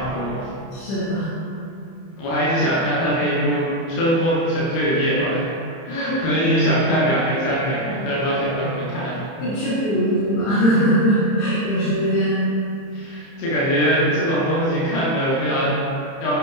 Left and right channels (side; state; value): right; late; 30 ms